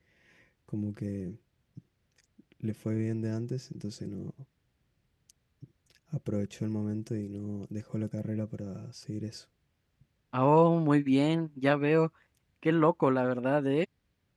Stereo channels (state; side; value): identical; both; correlation 1.00